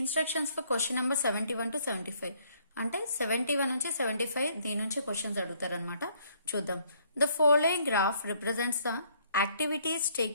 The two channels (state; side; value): inverted; both; correlation -0.65